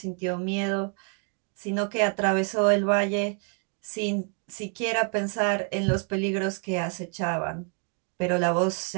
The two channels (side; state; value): left; quieter; 39.2 dB